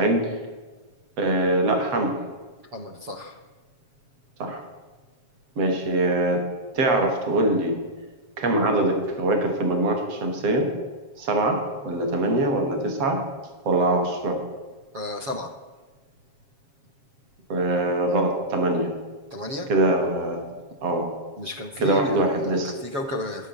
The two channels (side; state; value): left; late; 7.4 ms